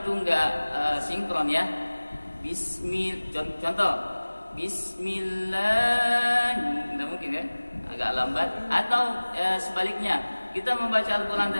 enggak sinkron ya. Contoh, Bismillah, enggak mungkin ya, agak lambat. Atau sebaliknya, kita membaca Al-Quran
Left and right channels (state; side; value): inverted; both; correlation -1.00